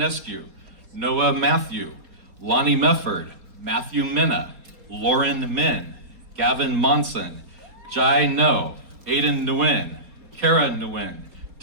Noah Matthew, Lonnie Mefford, Matthew Minna, Lauren Min, Gavin Monson, Jai No, Aiden Nguyen, Kara Nguyen,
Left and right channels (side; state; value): left; late; 4.2 ms